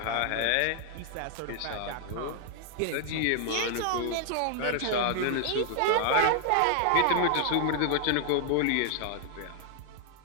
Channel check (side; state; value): both; different; correlation 0.00